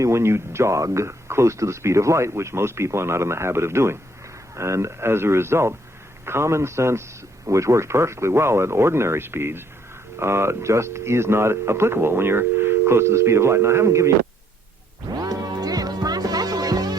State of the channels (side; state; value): both; normal; correlation 0.66